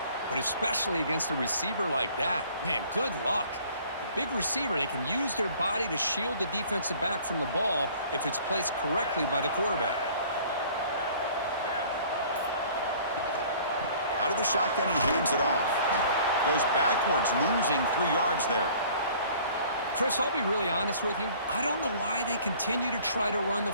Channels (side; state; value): both; inverted; correlation -0.52